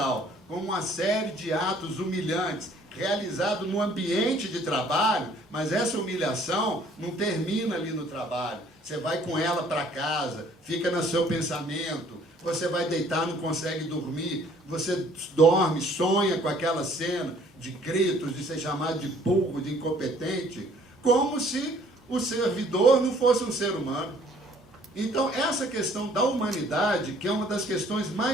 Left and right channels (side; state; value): both; normal; correlation 0.58